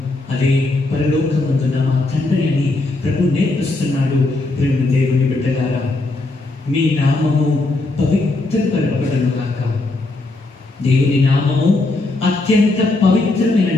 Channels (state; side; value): quieter; right; 3.0 dB